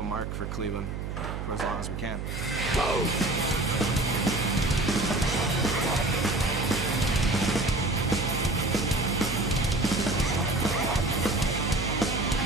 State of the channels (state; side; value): noise; right; hum, 5 dB below the sound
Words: mark for Cleveland for as long as we can.